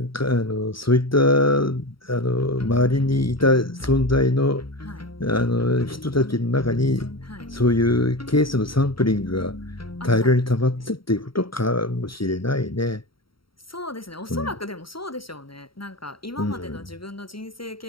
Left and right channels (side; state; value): right; late; 0.74 ms